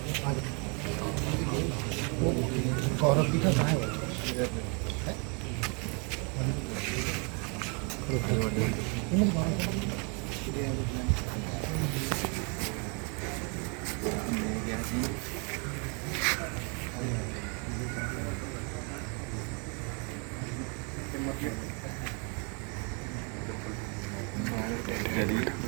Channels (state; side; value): quieter; left; 34.4 dB